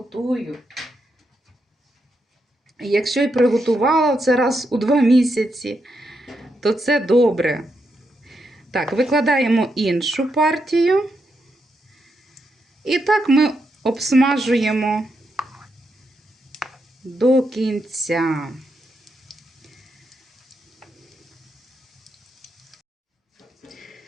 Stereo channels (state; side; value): normal; both; correlation 0.82